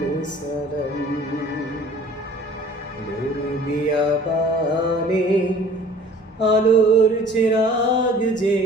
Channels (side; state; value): both; normal; correlation 0.49